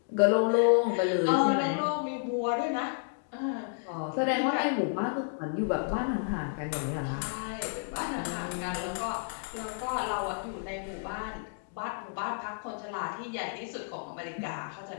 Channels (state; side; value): silent; right; digital silence